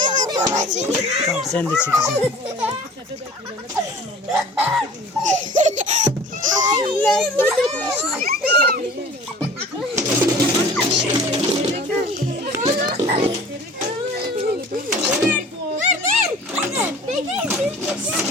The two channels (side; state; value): both; normal; correlation 0.45